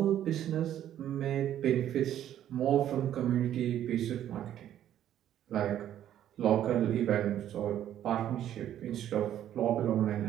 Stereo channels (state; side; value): quieter; left; 11.3 dB